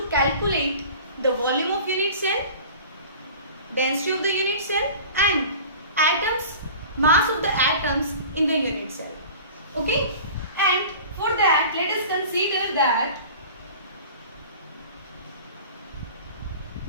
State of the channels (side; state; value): both; inverted; correlation -0.40